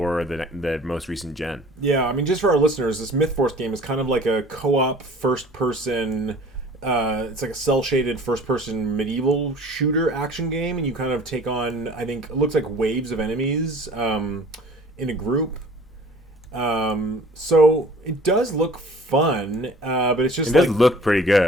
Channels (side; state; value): both; normal; correlation 0.48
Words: the most recent gen. Yeah, I mean, just for our listeners, this Myth Force game is kind of like a co-op first-person. It's like a cel-shaded first-person medieval shooter action game, and you kind of take on, I think, it looks like waves of enemies in a group. So it does look fun, but it's just it does look pretty